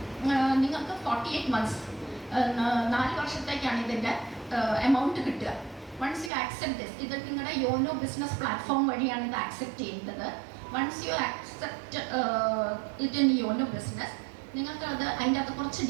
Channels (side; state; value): left; drops out; at 6.3 s